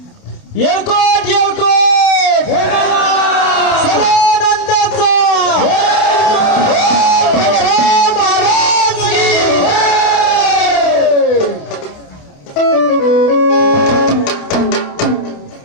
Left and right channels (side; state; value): right; late; 28 ms